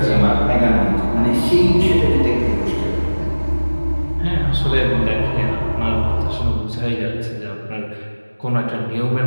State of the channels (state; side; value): inverted; both; correlation -1.00